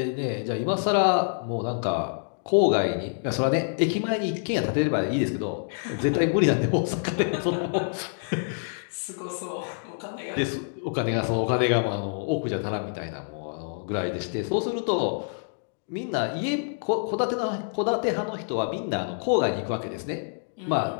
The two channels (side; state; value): right; silent; digital silence